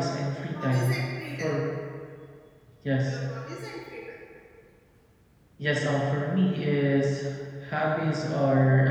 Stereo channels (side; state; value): both; identical; correlation 1.00